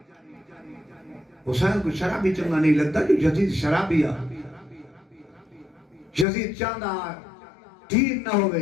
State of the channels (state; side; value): drops out; right; at 6.2 s